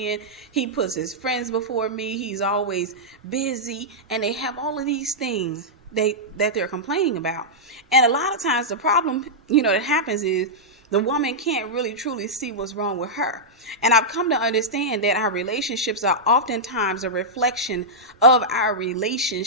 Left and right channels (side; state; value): both; normal; correlation -0.09